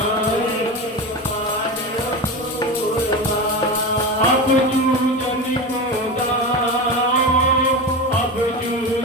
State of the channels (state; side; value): normal; both; correlation 0.23